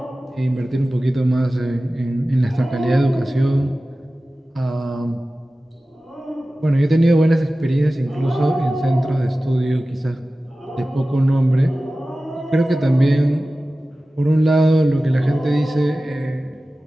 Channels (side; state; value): both; normal; correlation 0.96